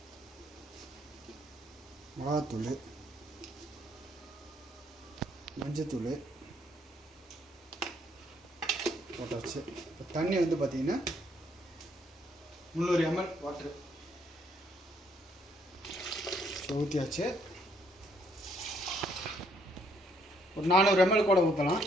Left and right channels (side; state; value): both; normal; correlation 0.69